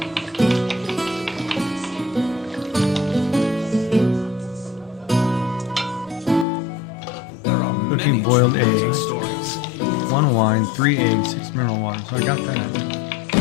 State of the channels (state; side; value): drops out; right; at 6.5 s